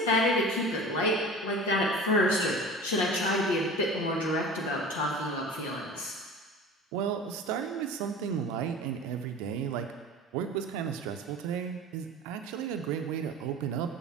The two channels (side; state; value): both; normal; correlation 0.36